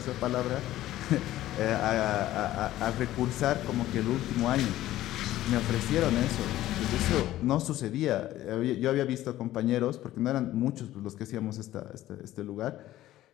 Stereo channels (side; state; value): right; quieter; 14.6 dB